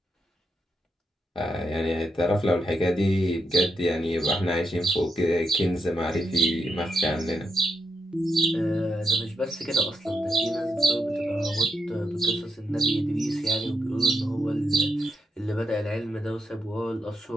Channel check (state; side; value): normal; both; correlation 0.81